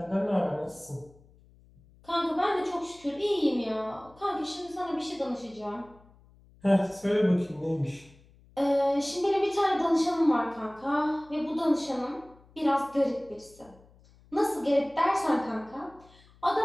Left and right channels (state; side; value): noise; left; hum, 27 dB below the sound